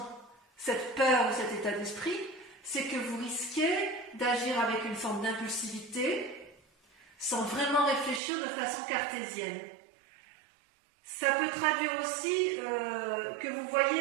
ou cet état d'esprit, c'est que vous risquez d'agir avec une forme d'impulsivité sans vraiment réfléchir de façon cartésienne. Ça peut traduire aussi que vous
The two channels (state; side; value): drops out; left; at 8.2 s